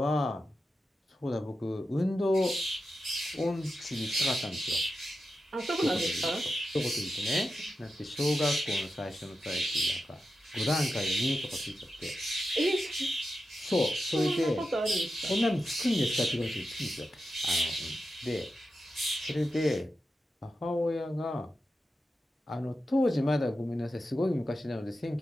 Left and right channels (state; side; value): normal; both; correlation 0.90